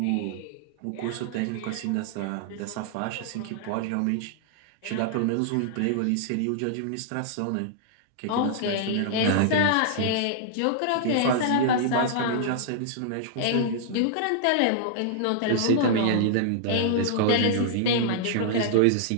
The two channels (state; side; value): different; both; correlation -0.01